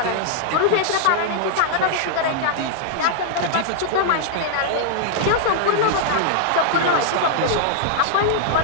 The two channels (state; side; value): different; both; correlation -0.01